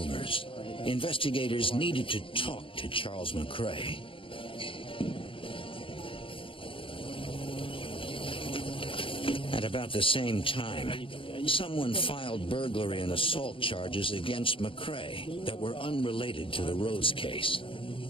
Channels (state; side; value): late; right; 0.25 ms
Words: investigators needed to talk to Charles McCrae. At about the same time, someone filed burglary and assault charges against McCrae that were unrelated to the Rhodes case.